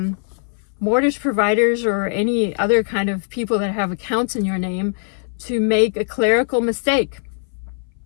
mortgage providers or any other kind of people that have accounts in your name to make a clerical mistake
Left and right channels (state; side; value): silent; right; 61 dB below the other